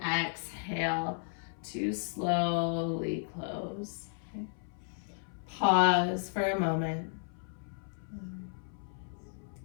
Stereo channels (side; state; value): right; silent; 55 dB below the other